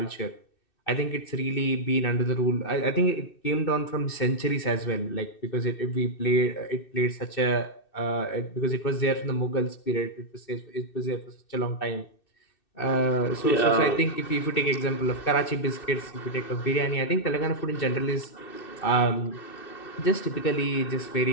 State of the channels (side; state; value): right; late; 2.6 ms